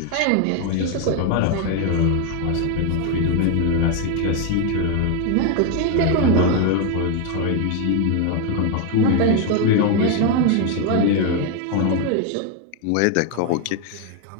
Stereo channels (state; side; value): different; both; correlation 0.01